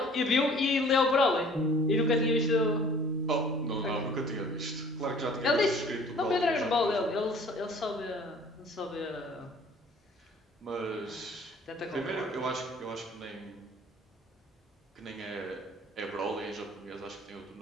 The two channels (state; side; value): normal; both; correlation 0.51